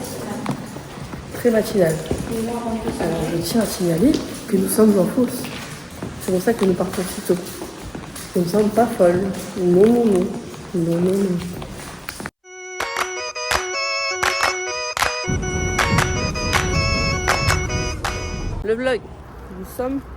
Très matinal. Alors, je tiens à signaler que nous sommes en fausse. C'est pour ça que nous partons si tôt. Nous ne sommes pas folles. Non, non, non. Non, non, non. Le vlog. Nous sommes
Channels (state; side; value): identical; both; correlation 1.00